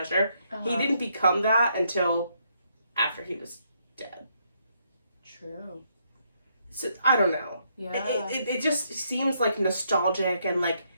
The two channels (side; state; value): both; inverted; correlation -0.74